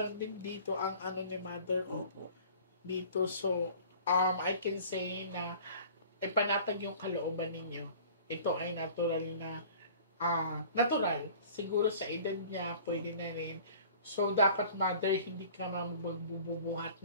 din dito ang ano ni Mother ko. Opo. Dito, so, I can say na ipanatag yung kalooban ninyo. Ito ay natural na, natural. Siguro sa edad niya, pwede na rin. So, dapat Mother, hindi ka magbubuhat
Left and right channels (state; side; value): inverted; both; correlation -0.46